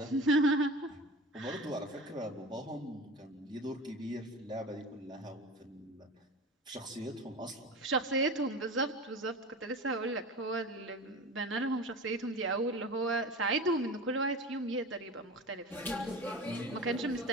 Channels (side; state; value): both; normal; correlation 0.33